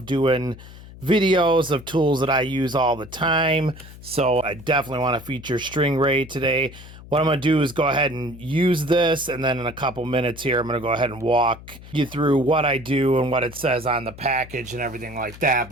doing videos of tools that I use all the time, so I definitely want to feature stringray today. What I'm going to do is go ahead and use this, and then in a couple minutes here, I'm going to go ahead and walk you through what I do and what it says on the package and everything like that.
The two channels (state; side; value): noise; left; hum, 17 dB below the sound